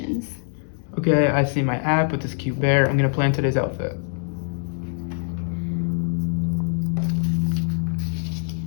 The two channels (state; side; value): silent; right; 63 dB below the other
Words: Okay, I see my app with this cute bear. I'm gonna plan today's outfit.